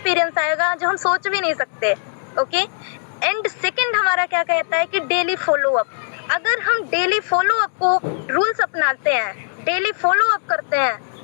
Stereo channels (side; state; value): right; silent; digital silence